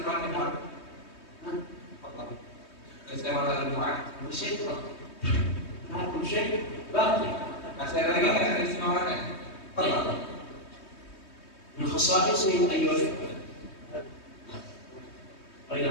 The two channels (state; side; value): late; right; 3.2 ms